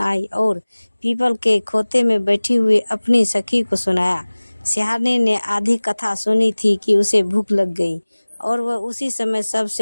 और पीपल के खोते में बैठी हुई अपनी सखी को सुनाया। सियारनी ने आधी कथा सुनी थी कि उसे भूख लग गई और वह उसी समय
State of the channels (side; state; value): both; inverted; correlation -1.00